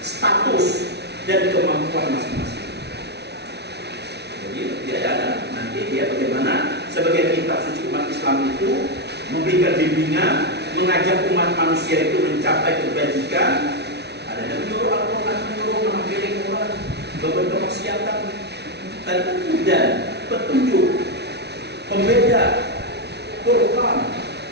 status dan kemampuan masing-masing. Jadi dia ada nanti dia bagaimana sebagai kitab suci umat Islam itu memberikan bimbingan, mengajak umat manusia itu mencapai kebajikan. Ada yang menyuruh Al-Quran, menyuruh mengampiri Quran, beberapa kemaksiatan, dan petunjuk, pembeda, Quran.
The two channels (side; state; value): left; late; 0.49 ms